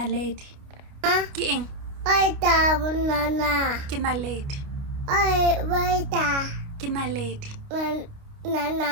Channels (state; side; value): late; left; 29 ms